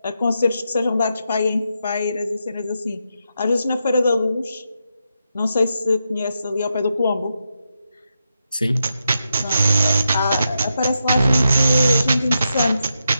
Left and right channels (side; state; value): both; inverted; correlation -0.85